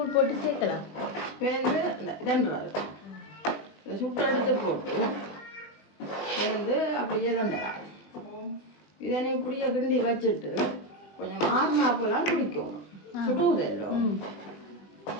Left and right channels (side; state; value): right; late; 20 ms